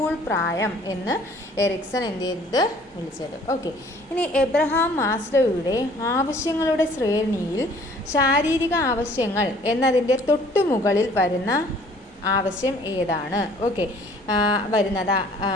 പ്രായം എന്ന് എറിക്സൺ എന്ത് ചെയ്തത് വിളിച്ചത്. ഓക്കെ, ഇനി എബ്രഹാം മാസ്ലോയുടെ ആവശ്യങ്ങളുടെ ശ്രേണിയിൽ ശാരീരിക ആവശ്യങ്ങൾ എന്നതിൻ്റെ തൊട്ടുമുകളിൽ വരുന്ന ആവശ്യം ഏതാണ്? ഓക്കെ, വരുന്നത്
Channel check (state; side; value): normal; both; correlation 0.55